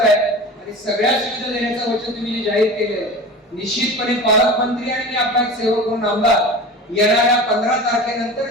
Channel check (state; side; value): normal; both; correlation 0.33